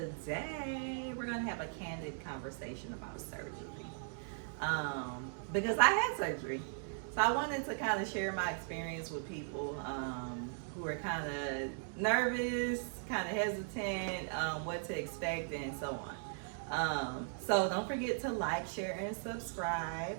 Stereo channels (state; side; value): silent; left; digital silence